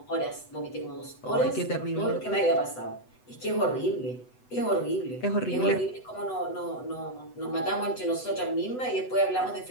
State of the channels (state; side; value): late; right; 8.0 ms